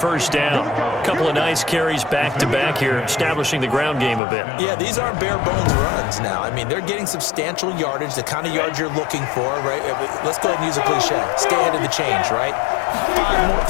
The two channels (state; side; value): drops out; right; at 4.2 s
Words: down. A couple of nice carries back-to-back here, establishing the ground game a bit. Yeah, these aren't bare-bones runs now. I mean, they're getting substantial yardage, the kind of yards you're looking for, right? Let's go ahead and use a cliche. Stay ahead of the change, right?